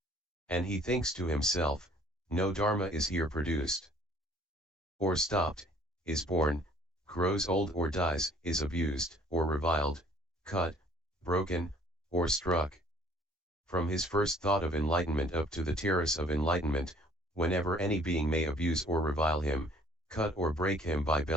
And he thinks to himself, no dharma is here produced, or stopped, is born, grows old or dies, is abused, or reviled, cut, broken, or struck. From his first thought of enlightenment up to the terrace of enlightenment, whenever any being may abuse or revile him, cut or break him by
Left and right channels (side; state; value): both; normal; correlation 0.56